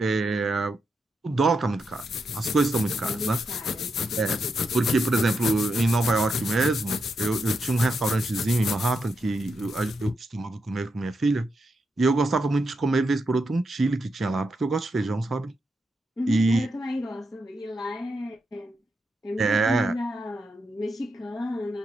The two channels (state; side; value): normal; both; correlation 0.84